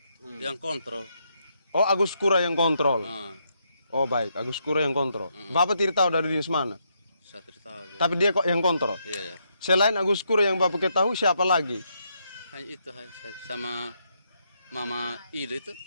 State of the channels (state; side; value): inverted; both; correlation -0.78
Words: yang kontrol. Oh Agus Kura yang kontrol. Ah, Oh baik, Agus Kura yang kontrol. Bapak tidak tahu dari dinas mana. saya tidak tahu juga. Tapi dia kok yang kontrol. Iya, ya. Selain Agus Kura yang Bapak ketahui siapa lagi? Hanya itu sama Mama Ida itu